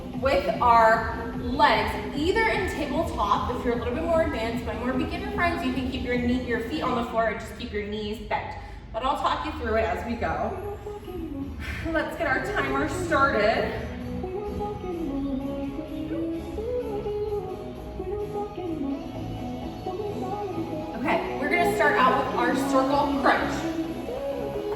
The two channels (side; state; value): both; identical; correlation 1.00